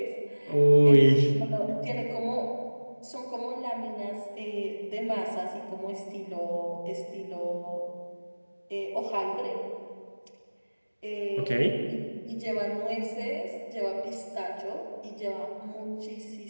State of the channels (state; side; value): inverted; both; correlation -1.00